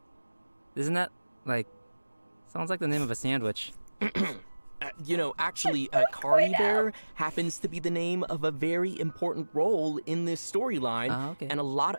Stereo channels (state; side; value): inverted; both; correlation -1.00